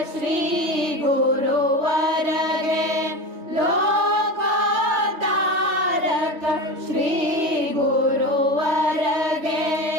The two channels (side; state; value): left; late; 3.3 ms